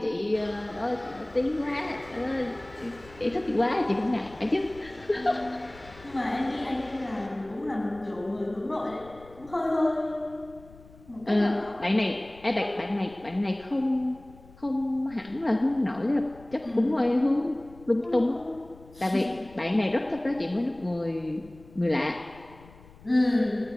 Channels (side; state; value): left; noise; rumble, 22 dB below the sound